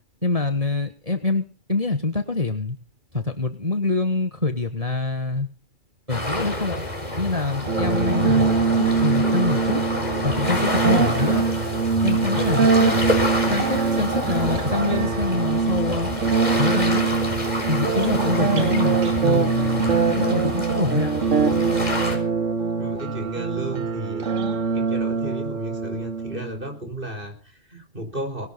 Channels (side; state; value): left; late; 2.1 ms